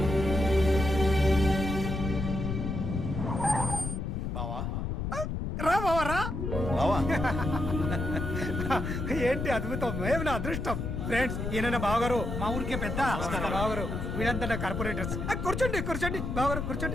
రా బావా రా. బావా, ఏంటి అద్భుతం, ఏమి నా అదృష్టం. ఫ్రెండ్స్, ఈయన నా బావగారు, మా ఊరికే పెద్ద బావగారు. వీళ్ళంతా నా కార్పొరేటర్స్. కూర్చోండి కూర్చోండి బావగారు,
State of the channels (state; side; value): noise; left; rumble, 3 dB below the sound